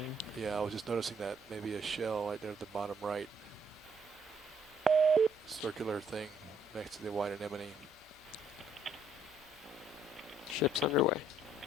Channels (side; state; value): left; noise; hum, 28 dB below the sound